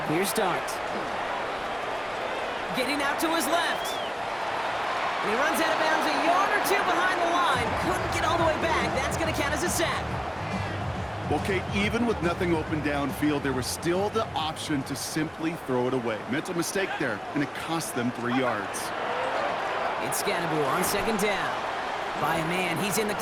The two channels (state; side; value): identical; both; correlation 1.00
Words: clear start. Getting out to his left. And he runs out of bounds a yard or two behind the line. Couldn't get all the way back. That's going to count as a sack. Well, Kate, even with nothing open downfield, there was still the option to simply throw it away. Mental mistake there, and it cost them 3 yards. It's Scannaboo on second down. By a man, he's in the